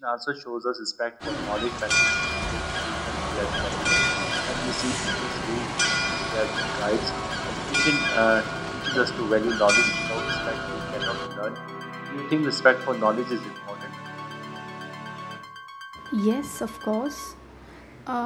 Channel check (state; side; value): identical; both; correlation 1.00